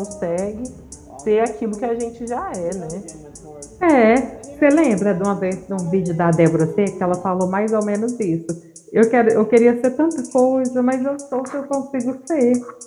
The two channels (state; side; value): identical; both; correlation 1.00